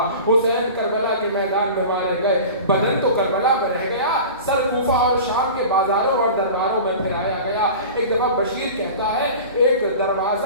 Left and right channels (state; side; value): inverted; both; correlation -0.36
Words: حسین کربلا کے میدان میں مارے گئے، بدن تو کربلا میں رہ گیا، سر کوفہ اور شام کے بازاروں اور درباروں میں پھیلایا گیا۔ ایک دفعہ بشیر کہتا ہے ایک